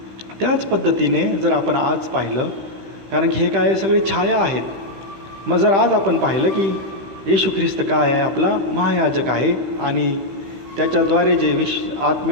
त्याच पद्धतीने जर आपण आज पाहिलं, कारण की हे काय सगळे छाया आहेत, मग जर आज आपण पाहिलं की येशू ख्रिस्त काय आहे, आपला महायाजक आहे, आणि त्याच्याद्वारे जे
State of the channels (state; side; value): late; left; 15 ms